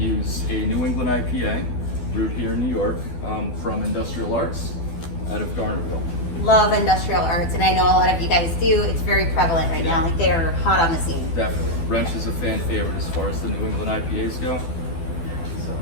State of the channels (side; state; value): right; late; 12 ms